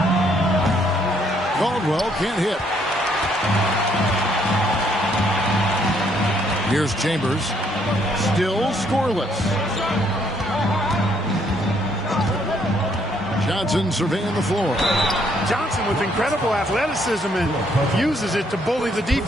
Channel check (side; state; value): both; normal; correlation 0.69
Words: Caldwell can't hit. Here's Chambers. Still scoreless. Johnson surveying the floor. Johnson with incredible athleticism and uses it to bully the